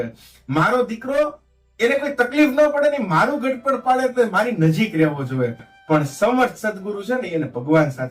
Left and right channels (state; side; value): identical; both; correlation 1.00